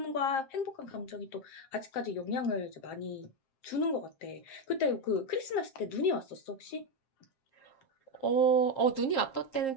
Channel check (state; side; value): late; right; 7.6 ms